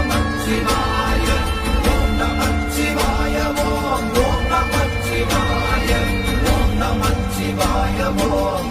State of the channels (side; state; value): both; identical; correlation 1.00